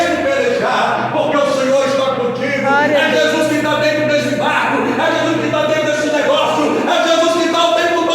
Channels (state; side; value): identical; both; correlation 1.00